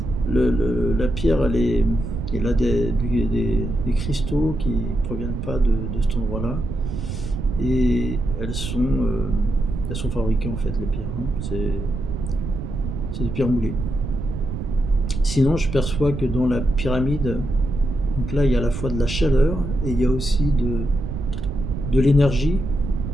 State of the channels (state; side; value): noise; right; rumble, 5 dB below the sound